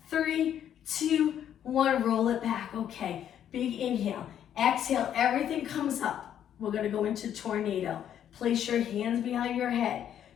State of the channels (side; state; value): right; quieter; 10.0 dB